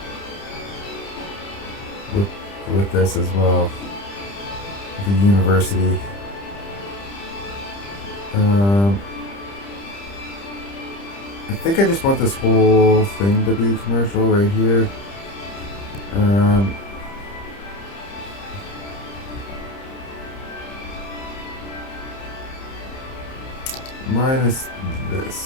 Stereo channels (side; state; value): right; late; 30 ms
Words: with with this as well. The university. I think I just want this whole thing to be commercial right here. Minus